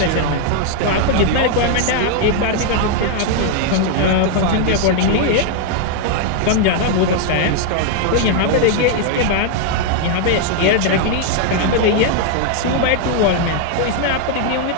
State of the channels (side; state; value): both; different; correlation 0.00